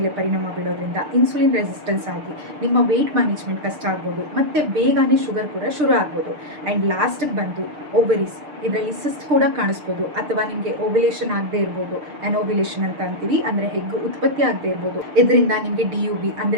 ಪರಿಣಾಮ ಬೀಳೋದ್ರಿಂದ ಇನ್ಸುಲಿನ್ ರೆಸಿಸ್ಟೆನ್ಸ್ ಆಗಿ ನಿಮ್ಮ ವೆಯ್ಟ್ ಮ್ಯಾನೇಜ್ಮೆಂಟ್ ಕಷ್ಟ ಆಗ್ಬೋದು, ಮತ್ತು ಬೇಗನೆ ಶುಗರ್ ಕೂಡ ಶುರು ಆಗ್ಬೋದು. ಆ್ಯಂಡ್ ಲಾಸ್ಟಿಗೆ ಬಂದು ಓವರೀಸ್, ಇದರಲ್ಲಿ ಸಿಸ್ಟ್ ಕೂಡ ಕಾಣಿಸ್ಬೋದು ಅಥವಾ ನಿಮಗೆ ಓವ್ಯುಲೇಷನ್ ಆಗದೆ ಇರ್ಬೋದು, ಅನೋವ್ಯುಲೇಷನ್ ಅಂತ ಅಂತೀವಿ, ಅಂದರೆ ಹೆಗ್ಗು ಉತ್ಪತ್ತಿ ಆಗದೆ ಇರ್ಬೋದು. ಇದರಿಂದ ನಿಮಗೆ DUB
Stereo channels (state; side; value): late; left; 6.7 ms